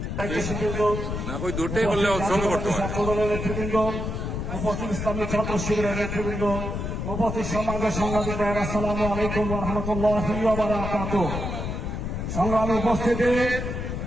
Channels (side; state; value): left; noise; rumble, 4 dB below the sound